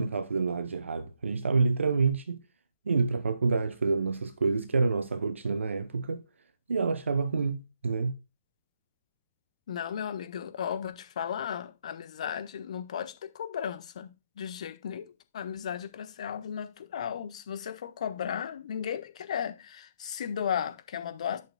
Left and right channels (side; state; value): both; inverted; correlation -0.77